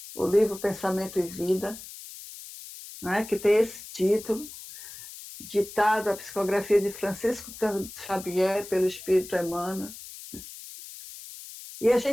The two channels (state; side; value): noise; left; hiss, 14 dB below the sound